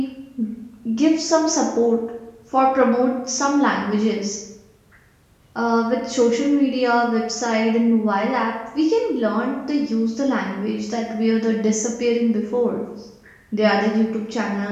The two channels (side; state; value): both; identical; correlation 1.00